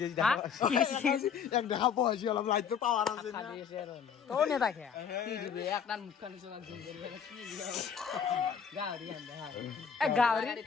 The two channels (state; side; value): quieter; right; 7.1 dB